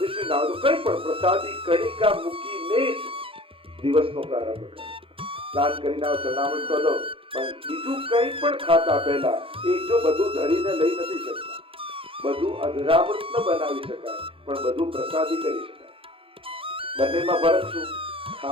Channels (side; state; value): left; late; 0.26 ms